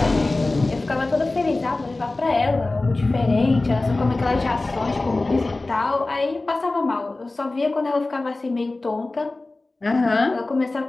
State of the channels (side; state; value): right; quieter; 3.1 dB